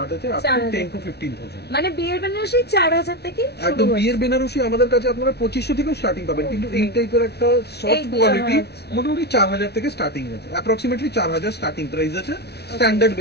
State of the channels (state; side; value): late; right; 0.48 ms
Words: আছে আপ টু 10 to 15000। মানে বিয়ের বেনারসি 4000 থেকে একদম বিয়ের বেনারসি আমাদের কাছে আপনারা 2500 থেকে স্টার্টিং পাবেন, কিন্তু এই টাইপের একটা সফট কোয়ালিটি মোটামুটি 4000 থেকে স্টার্টিং আছে, অ্যাপ্রক্সিমেটলি 4000 স্টার্টিং প্রাইস আছে স্ট্যান্ডার্ড